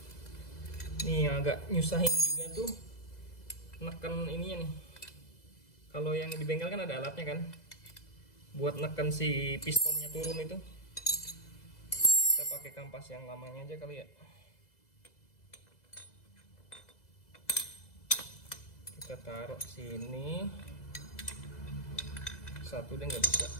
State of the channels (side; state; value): right; late; 2.0 ms